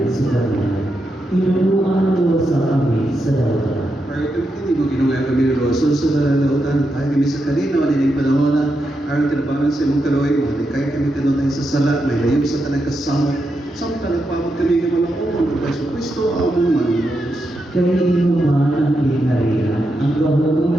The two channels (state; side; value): normal; both; correlation 0.85